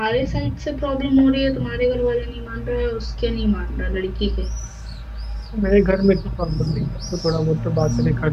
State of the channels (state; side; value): identical; both; correlation 1.00